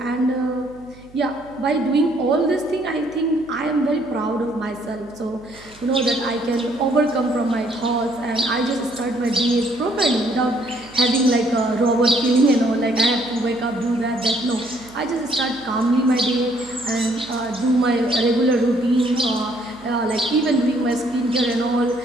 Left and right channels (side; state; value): right; noise; hum, 25 dB below the sound